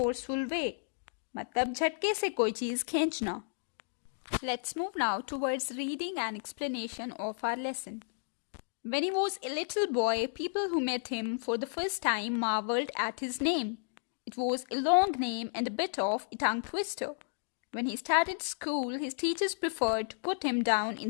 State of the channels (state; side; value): silent; right; digital silence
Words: way. मतलब झटके से कोई चीज खींचना. Let's move now towards reading and explanation of our lesson. When he was a little boy, people who met him for the first time marveled at his name. It was a long name and a bit of a tongue twister. When he started school, his teachers preferred to put him down in